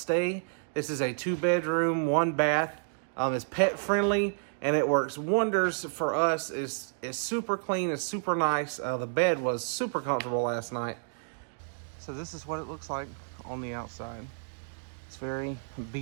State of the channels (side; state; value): left; silent; digital silence